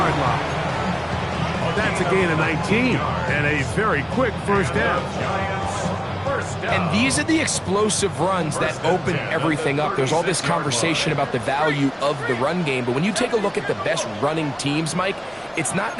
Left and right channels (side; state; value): both; identical; correlation 1.00